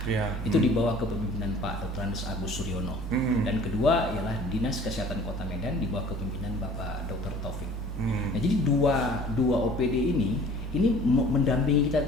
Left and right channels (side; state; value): both; normal; correlation 0.49